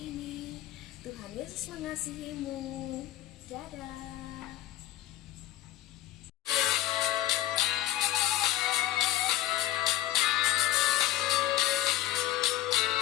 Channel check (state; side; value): quieter; right; 14.4 dB